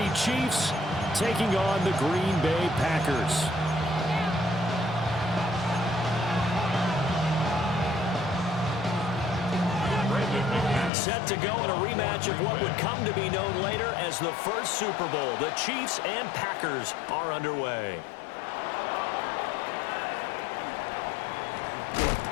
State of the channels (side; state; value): right; drops out; at 10.9 s